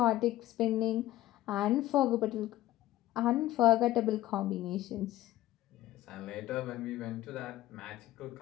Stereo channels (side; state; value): right; quieter; 15.2 dB